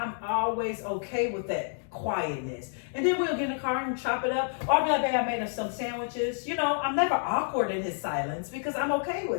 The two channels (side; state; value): right; silent; digital silence